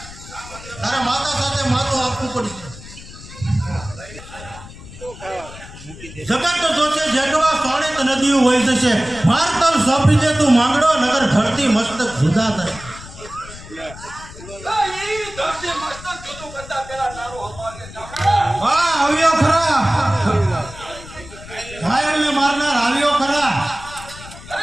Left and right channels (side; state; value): left; noise; rumble, 16 dB below the sound